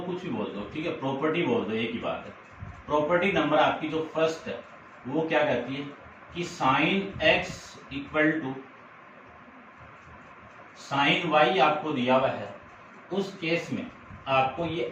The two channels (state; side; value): identical; both; correlation 1.00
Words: कुछ भी बोल दो, ठीक है, प्रॉपर्टी बोल दो, एक ही बात है। प्रॉपर्टी नंबर आपकी जो फर्स्ट है वो क्या कहती है कि sine x equal to sine y आपको दिया हुआ है, उस केस में आपको ये